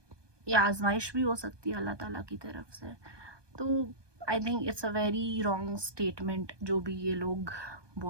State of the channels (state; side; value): late; left; 1.2 ms